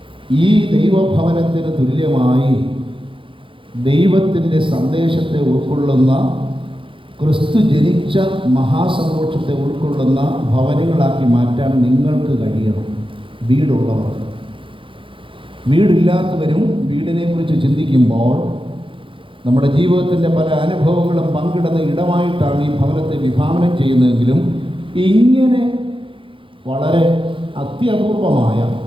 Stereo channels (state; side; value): late; left; 0.25 ms